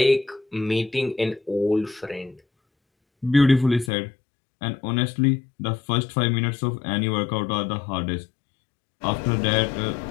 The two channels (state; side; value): drops out; right; at 3.9 s